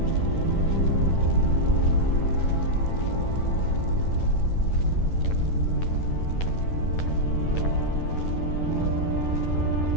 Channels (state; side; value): late; right; 11 ms